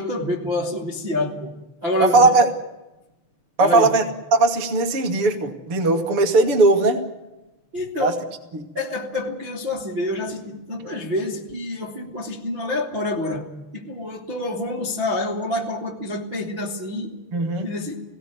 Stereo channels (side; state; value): left; late; 6.9 ms